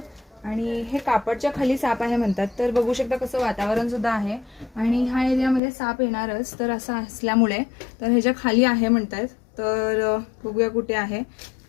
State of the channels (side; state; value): right; drops out; at 5.6 s